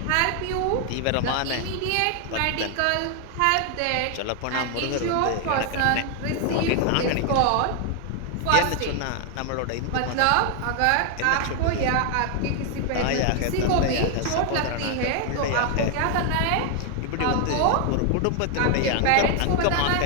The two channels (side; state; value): both; different; correlation 0.00